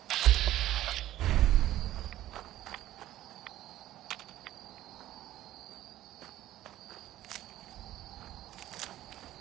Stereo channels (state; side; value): quieter; left; 13.9 dB